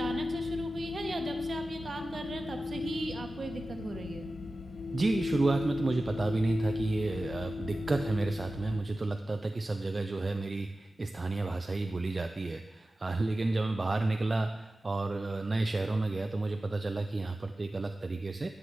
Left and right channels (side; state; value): both; normal; correlation 0.95